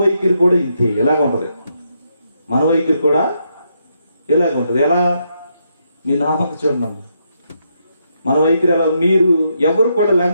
వైఖరి కూడా ఇంతే, ఎలాగ ఉంటుంది. మన వైఖరి కూడా ఎలాగ ఉంటుంది. ఎలా? మీ నామకు చూడండి, మన వైఖరి ఎలా? మీరు ఎవరు కూడా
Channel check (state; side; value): inverted; both; correlation -0.79